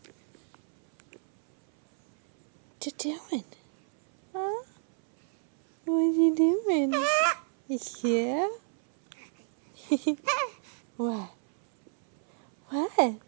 you doing? Huh? What you doing? Yeah? What? What? What are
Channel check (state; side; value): silent; left; 59 dB below the other